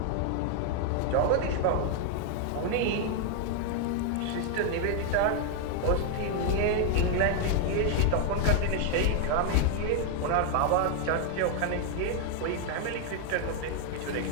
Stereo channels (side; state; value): both; different; correlation 0.00